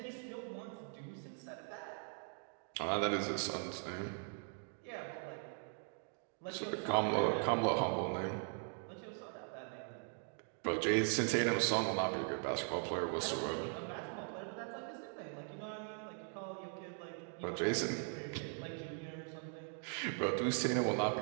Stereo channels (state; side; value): silent; left; 51 dB below the other